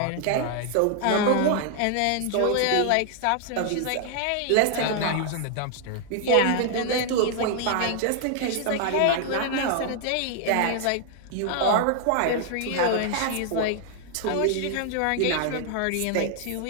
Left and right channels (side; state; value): both; different; correlation 0.00